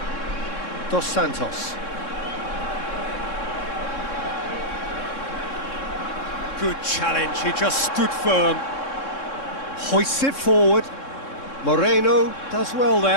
Dos Santos. Good challenge, he just stood firm. Hoists it forward. Moreno does well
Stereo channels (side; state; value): right; late; 3.6 ms